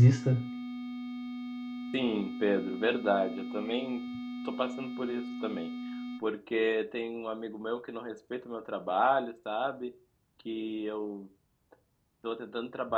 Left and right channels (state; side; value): identical; both; correlation 1.00